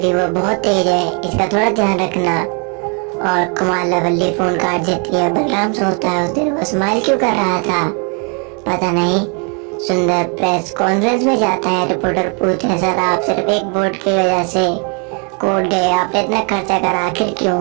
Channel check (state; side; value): quieter; left; 37.0 dB